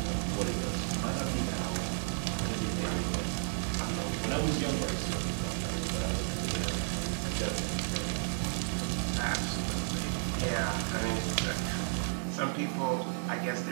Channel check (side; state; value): left; silent; digital silence